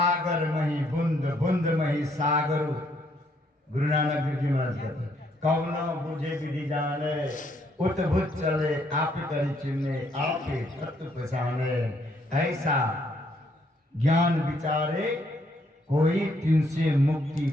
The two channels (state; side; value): normal; both; correlation 0.70